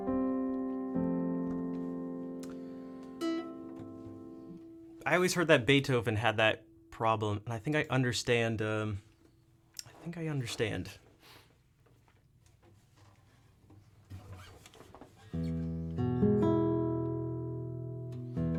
I always heard that Beethoven had that problem, and I think I understand. All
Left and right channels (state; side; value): identical; both; correlation 1.00